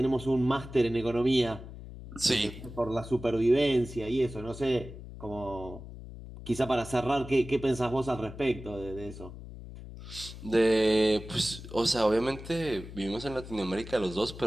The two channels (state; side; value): noise; left; hum, 13 dB below the sound